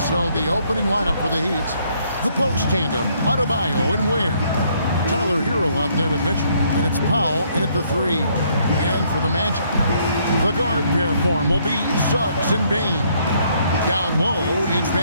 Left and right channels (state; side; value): inverted; both; correlation -0.68